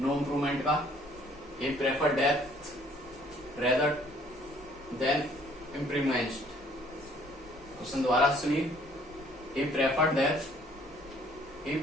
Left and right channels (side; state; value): both; normal; correlation 0.60